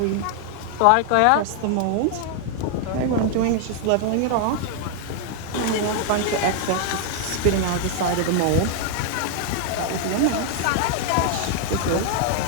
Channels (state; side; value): different; both; correlation 0.00